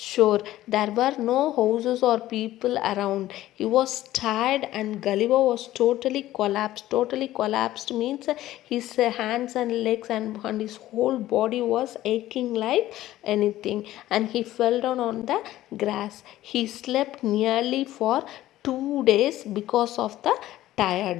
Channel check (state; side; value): quieter; right; 14.8 dB